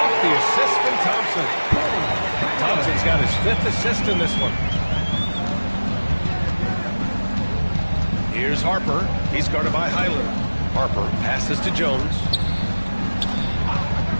the assist from Thompson. Thompson's got his 5th assist in this one. Here's Harper. He's guarded by Highland. Harper passes to Jones.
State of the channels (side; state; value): both; inverted; correlation -1.00